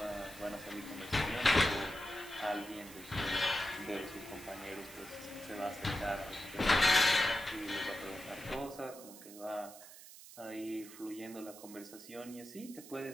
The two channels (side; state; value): right; noise; hiss, 16 dB below the sound